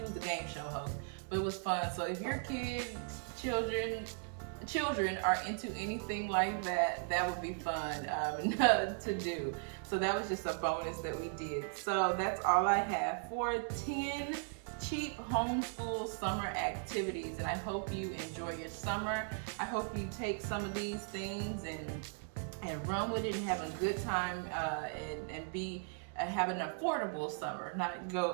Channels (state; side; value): silent; left; 53 dB below the other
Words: game show host. But it was fun. So if your kids, children are into anything like that, that would be fun to do. So that was just a bonus that we did. So that's all I have for 10 cheap homeschool summer activities, and I hope you enjoy your summer. I hope you take some of these things and run with it and have a good time and have an affordable summer, not